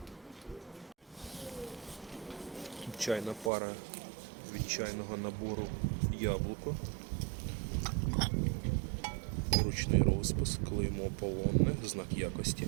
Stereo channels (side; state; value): left; drops out; at 3.5 s